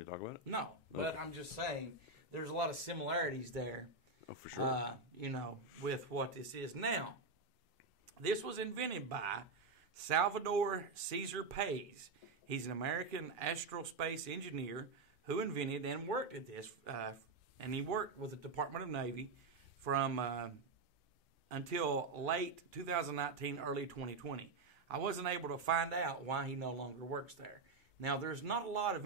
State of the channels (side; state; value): left; quieter; 4.0 dB